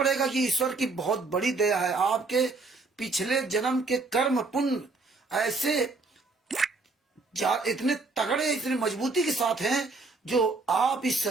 कि ईश्वर की बहुत बड़ी दया है। आपके पिछले जन्म के कर्म पुण्य ऐसे इतने तगड़े, इतने मजबूती के साथ हैं जो आप इस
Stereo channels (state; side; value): quieter; left; 3.7 dB